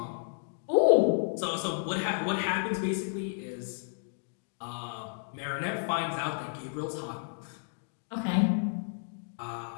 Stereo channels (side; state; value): right; silent; digital silence